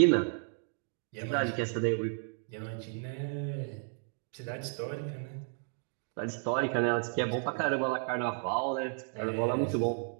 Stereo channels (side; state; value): left; silent; 56 dB below the other